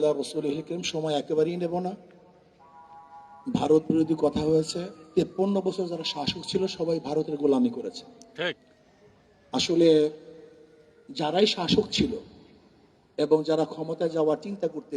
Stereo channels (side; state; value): both; identical; correlation 1.00